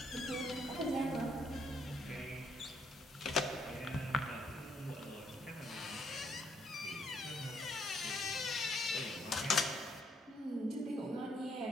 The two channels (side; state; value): both; normal; correlation 0.70